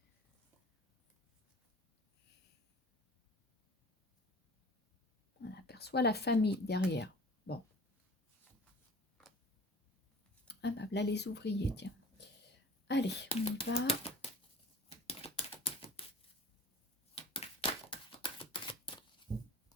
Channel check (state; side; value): normal; both; correlation 0.42